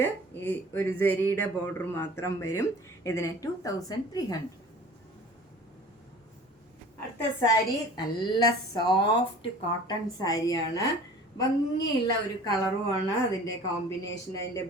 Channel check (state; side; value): normal; both; correlation 0.44